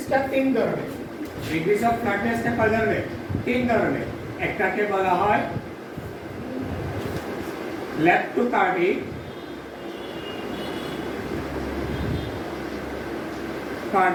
তিন ধরনের, ডিগ্রিজ অফ ফ্ল্যাটনেসটা কয় ধরনের? তিন ধরনের। একটাকে বলা হয় ল্যাপ্টোকার্ডিক,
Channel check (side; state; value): both; identical; correlation 1.00